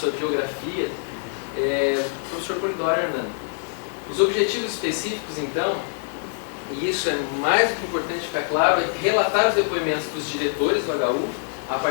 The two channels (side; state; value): right; silent; 60 dB below the other